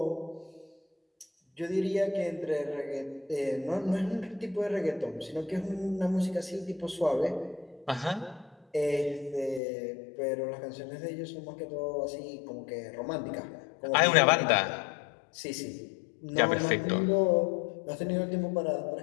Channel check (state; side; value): drops out; right; at 9.6 s